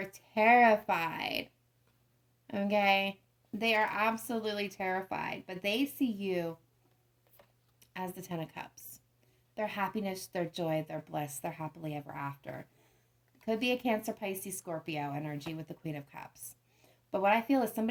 terrified. Okay? They are absolutely terrified. But they see you as the Ten of Cups. Their happiness, their joy, their bliss, their happily ever after. Could be a Cancer, Pisces, Scorpio energy with the Queen of Cups. But what I feel is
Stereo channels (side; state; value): both; identical; correlation 1.00